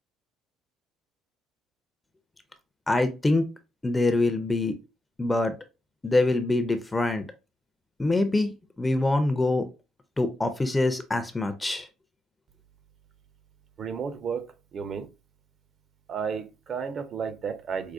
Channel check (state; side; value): normal; both; correlation 0.87